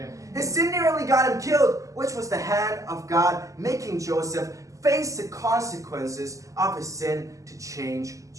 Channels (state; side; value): late; left; 0.16 ms